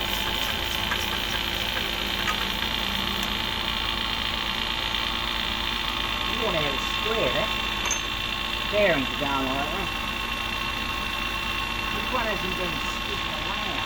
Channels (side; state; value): left; noise; rumble, 12 dB below the sound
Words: Worn out square, that. Bearings are going like that. This one hasn't been sticking around.